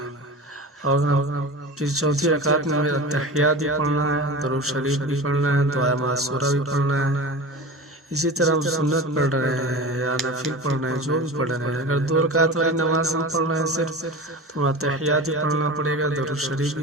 اور پھر چوتھی رکعت میں ہمیں تحیات بھی پڑھنا ہے، درود شریف بھی پڑھنا ہے، دعائے معصورہ بھی پڑھنا ہے۔ اسی طرح ہم سنت پڑھ رہے ہیں یا نفل پڑھ رہے ہیں، جو بھی پڑھ رہے ہیں، اگر 2 رکعت والی نماز ہم پڑھ رہے ہیں صرف، تو ہمیں تحیات بھی پڑھنا پڑے گا، درود شریف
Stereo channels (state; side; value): normal; both; correlation 0.32